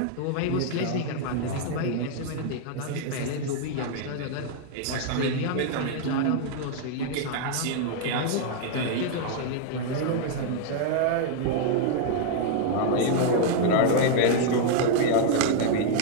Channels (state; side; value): different; both; correlation 0.00